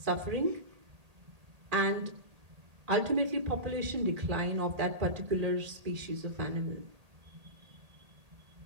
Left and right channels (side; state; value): left; late; 1.8 ms